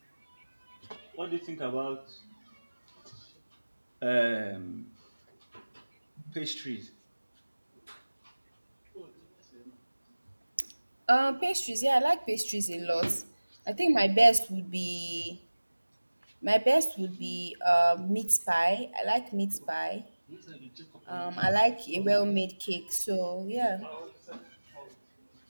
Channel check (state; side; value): inverted; both; correlation -1.00